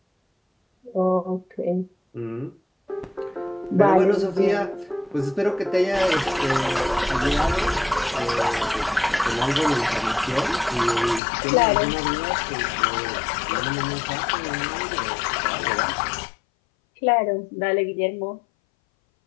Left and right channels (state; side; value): drops out; right; at 11.2 s